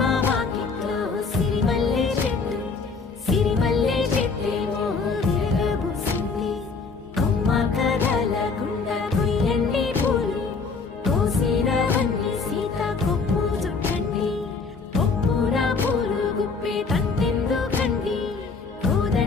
వాకిట్లో సిరిమల్లె చెట్టేమో విరగబూసింది కొమ్మ కదలకుండా కొయ్యండి పూలు కోసినవన్నీ సీత కొప్పు చుట్టండి కొప్పున పూలు గుప్పే తంతెందుకండి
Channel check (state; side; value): quieter; right; 4.6 dB